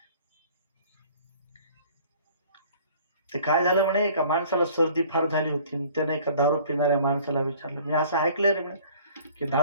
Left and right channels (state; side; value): inverted; both; correlation -0.51